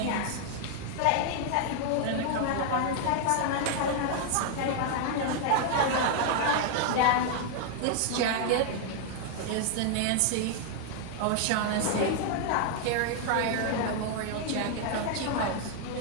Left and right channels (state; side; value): different; both; correlation 0.00